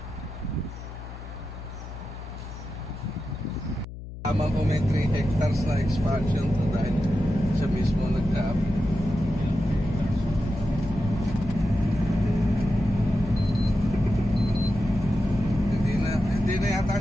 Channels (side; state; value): left; noise; hum, 12 dB below the sound